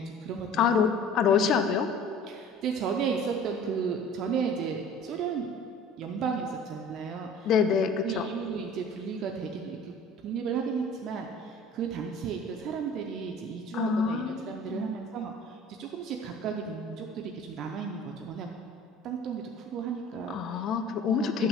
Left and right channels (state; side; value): normal; both; correlation 0.45